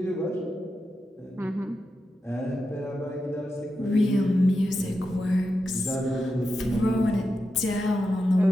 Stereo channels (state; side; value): normal; both; correlation 0.88